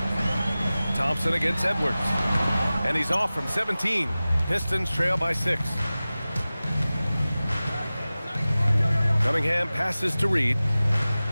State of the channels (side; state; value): both; inverted; correlation -0.97